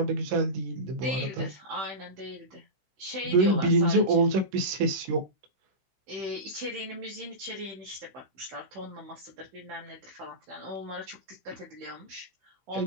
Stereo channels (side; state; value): left; late; 16 ms